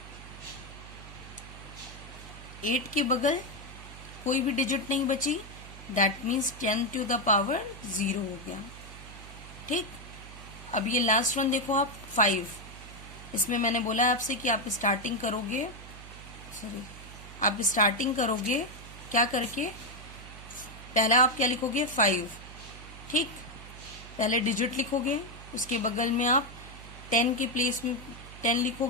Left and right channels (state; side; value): noise; right; hum, 15 dB below the sound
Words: 8 के बगल कोई भी डिजिट नहीं बची, that means 10 to the power 0 हो गया। ठीक, अब ये लास्ट वन देखो आप, 5। इसमें मैंने बोला आपसे कि आप स्टार्टिंग करोगे, क्या करके, पहला आप क्या लिखोगे, 5। ठीक, पहले डिजिट लिखोगे, उसके बगल में आप 10 के प्लेस में 10